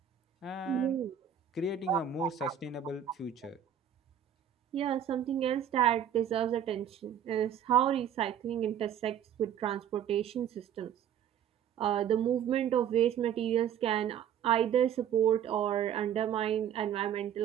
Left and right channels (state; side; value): quieter; left; 9.3 dB